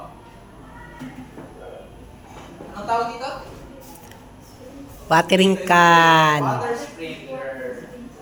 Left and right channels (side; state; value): both; identical; correlation 1.00